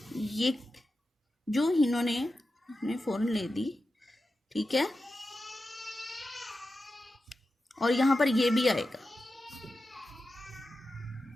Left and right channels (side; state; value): both; normal; correlation 0.92